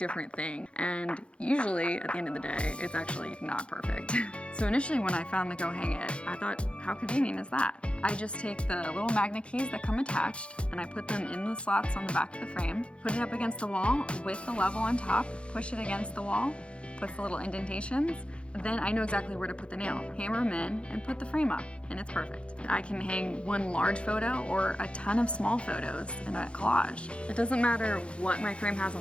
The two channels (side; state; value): right; late; 0.059 ms